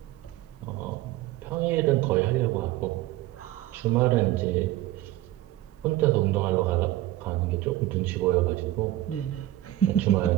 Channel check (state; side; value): quieter; left; 15.7 dB